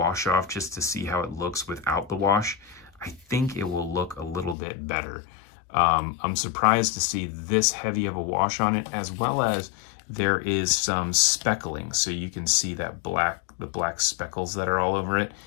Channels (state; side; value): drops out; right; at 4.5 s